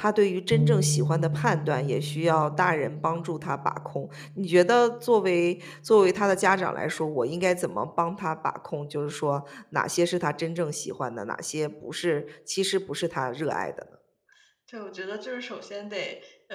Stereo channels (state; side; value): identical; both; correlation 1.00